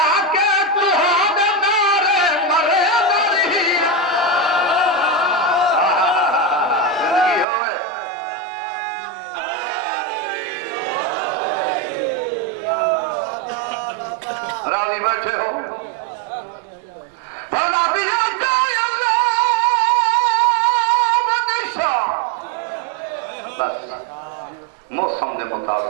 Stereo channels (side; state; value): left; drops out; at 7.5 s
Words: راضی بیٹھے ہو موسم دے